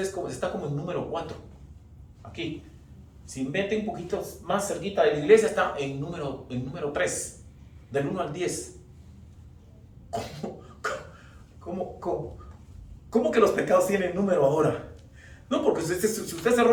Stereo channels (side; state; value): both; identical; correlation 1.00